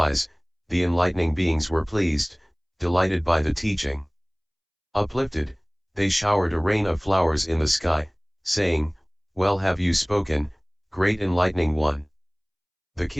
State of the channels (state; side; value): identical; both; correlation 1.00